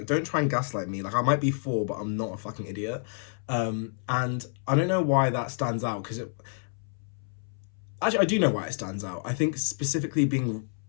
don't try and gaslight me. Like I might be 4, but I'm not a fucking idiot. And I don't know why that stands out, because it actually, I do know why it stands out. I think specifically being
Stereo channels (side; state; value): right; silent; 59 dB below the other